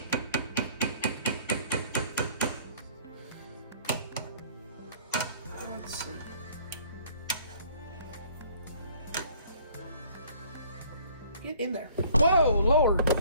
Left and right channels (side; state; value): both; inverted; correlation -0.56